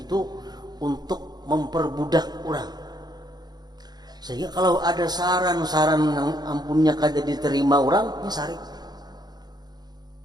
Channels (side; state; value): left; late; 0.20 ms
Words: untuk memperbudak orang. Sehingga kalau ada saran-saran yang ampunnya kada diterima orang, ini sarik.